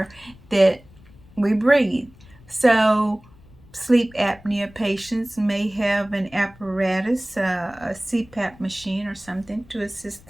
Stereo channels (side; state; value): left; noise; rumble, 24 dB below the sound